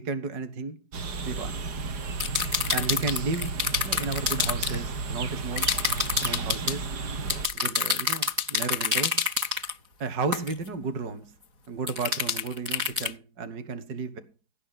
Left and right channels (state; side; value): late; left; 4.7 ms